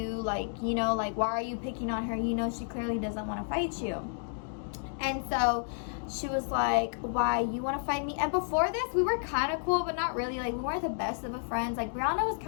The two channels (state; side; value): silent; right; digital silence